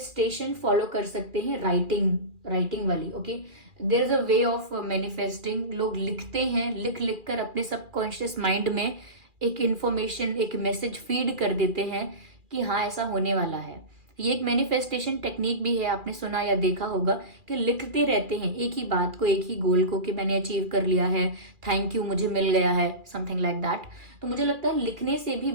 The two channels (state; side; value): late; left; 2.4 ms